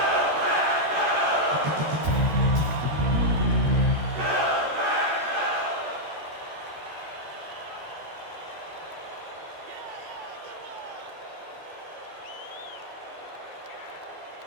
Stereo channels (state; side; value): late; left; 13 ms